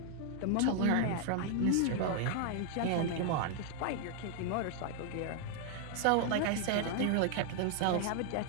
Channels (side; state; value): both; different; correlation 0.00